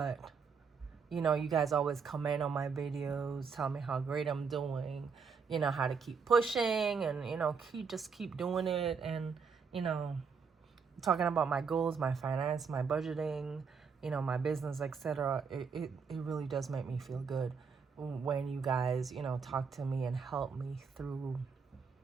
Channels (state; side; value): quieter; left; 5.7 dB